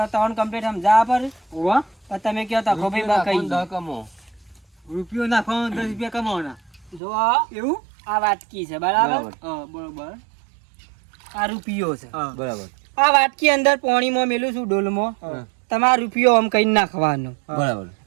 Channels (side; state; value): left; drops out; at 7.0 s